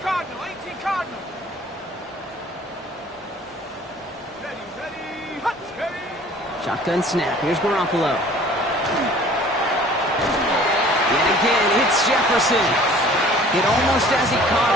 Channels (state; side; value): normal; both; correlation 0.50